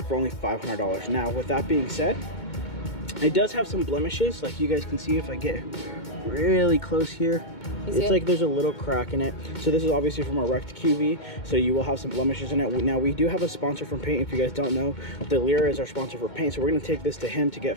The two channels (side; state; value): right; late; 2.2 ms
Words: for only $500. Now, with that being said, it does have some blemishes, like you guys can see if I get really close here. It's like there's a little crack in it. So this is obviously from a wrecked QV, so you will have some blemishes in it. Now we do have a sponsor from paint. If you guys don't know, the Lira is our sponsor for paint, so we're going to take this to him to get